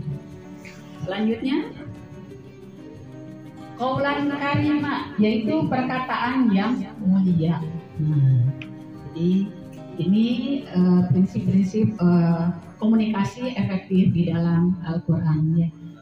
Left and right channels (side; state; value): both; identical; correlation 1.00